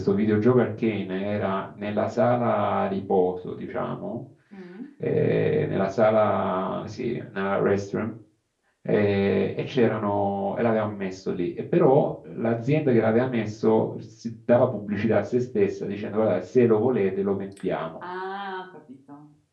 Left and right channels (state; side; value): identical; both; correlation 1.00